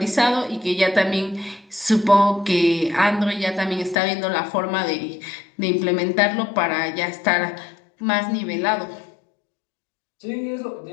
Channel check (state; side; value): drops out; right; at 4.0 s